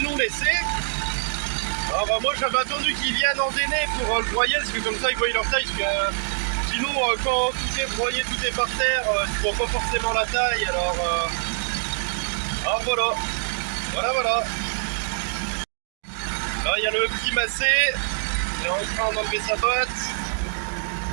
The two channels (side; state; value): left; silent; digital silence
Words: l'ont laissé. Alors moi j'avais attendu qu'ils viennent endainer pour le broyer, parce que comme ça ils voient leur taille, parce que sinon quand tout est broyé, tout est par terre, tu vois pas forcément la taille, alors voilà. Là il y a le petit massé, il est en train d'enlever sa botte.